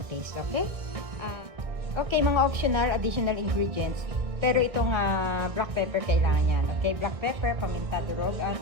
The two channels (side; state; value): left; late; 1.6 ms